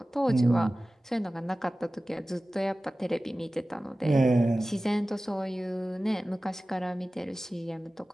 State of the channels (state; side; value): normal; both; correlation 0.96